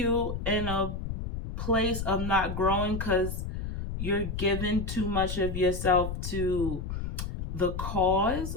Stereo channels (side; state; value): left; noise; rumble, 5 dB below the sound